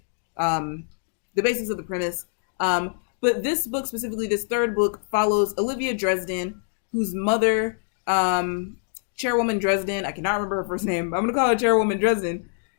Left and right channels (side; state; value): right; silent; digital silence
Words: of the premise. But this book, specifically this third book, follows Olivia Dresden, whose mother, Chairwoman Dresden, I cannot remember her first name, but I'm going to call her Chairwoman Dresden.